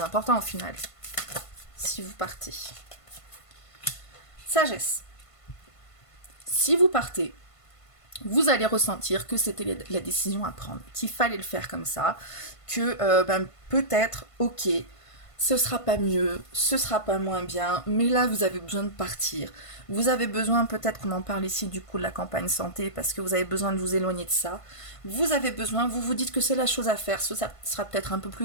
important au final. Si vous partez. Sagesse. Si vous partez, vous allez ressentir que c'était la décision à prendre, qu'il fallait le faire comme ça, que peut-être, ok, ce sera pas mieux, ce sera pas moins bien, mais là vous avez besoin de partir. Vous avez besoin, peut-être qu'on en parle ici du coup de la campagne santé, parce que vous avez besoin de vous éloigner de ça. Vous avez besoin, vous vous dites que c'est la chose à faire, ça sera peut-être un peu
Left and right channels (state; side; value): late; right; 1.5 ms